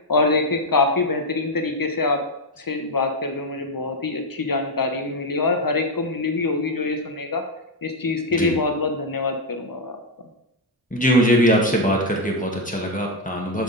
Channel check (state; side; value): normal; both; correlation 0.04